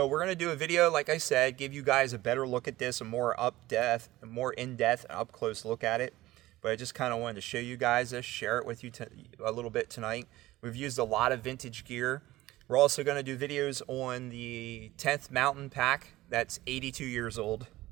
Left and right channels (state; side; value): quieter; left; 17.2 dB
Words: we're going to do a video, like I said, give you guys a better look at this, a more in-depth, and up-close look at it. But I just kind of wanted to show you guys this, share it with you a little bit tonight. We've used a lot of vintage gear. We're also going to do videos on the 10th Mountain Pack that's 82 years old.